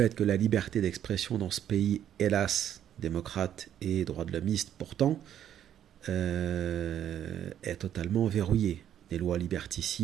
que la liberté d'expression dans ce pays, hélas, démocrate et droit de l'hommiste pourtant, est totalement verrouillée. Des lois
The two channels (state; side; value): quieter; left; 10.3 dB